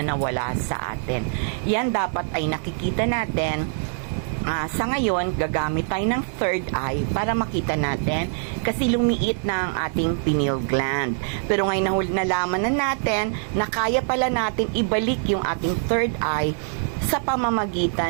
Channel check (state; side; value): silent; left; 63 dB below the other